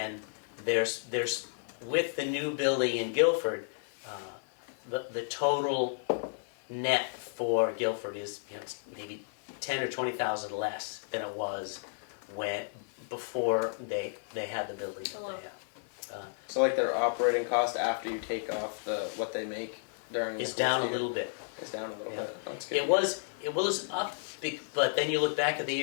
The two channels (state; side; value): silent; right; 56 dB below the other